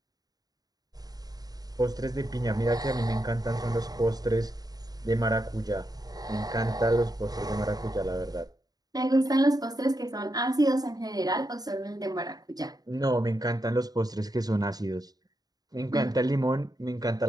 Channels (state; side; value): late; left; 0.19 ms